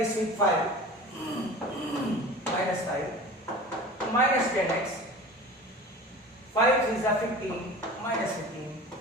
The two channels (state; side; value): normal; both; correlation 0.37